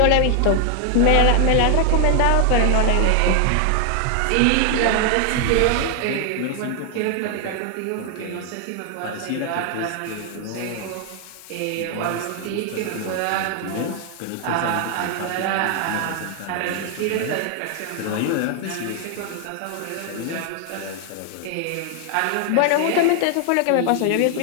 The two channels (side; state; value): both; different; correlation 0.00